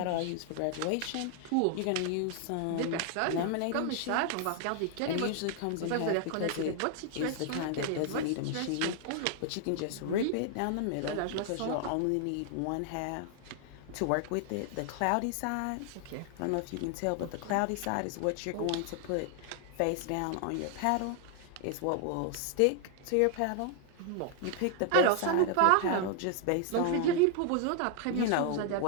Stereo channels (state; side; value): different; both; correlation 0.00